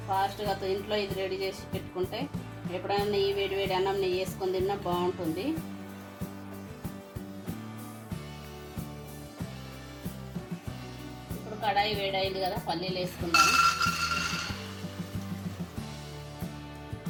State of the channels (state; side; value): identical; both; correlation 1.00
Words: ఫాస్ట్గా ఇంట్లో ఇది రెడీ చేసి పెట్టుకుంటే ఎప్పుడైనా నెయ్యి వేడి అన్నం నెయ్యి వేసుకొని తిన్నా బాగుంటుంది. ఇప్పుడు కడాయి వేడైంది కదా, పల్లీలు వేసుకుందాము.